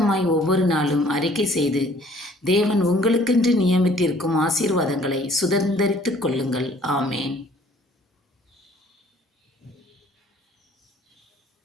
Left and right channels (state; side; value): normal; both; correlation 0.57